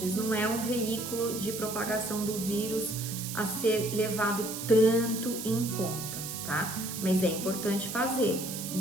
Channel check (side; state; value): right; noise; hiss, 7 dB below the sound